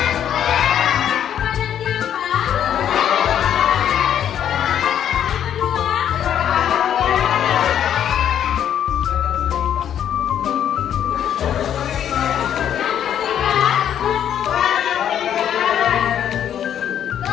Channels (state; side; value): quieter; right; 9.8 dB